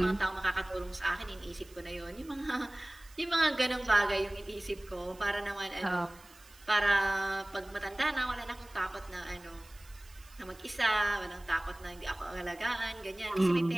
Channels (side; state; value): right; noise; hiss, 24 dB below the sound